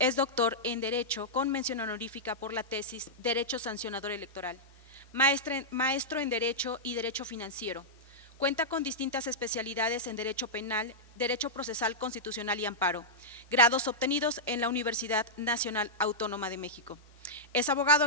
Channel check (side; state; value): both; normal; correlation -0.10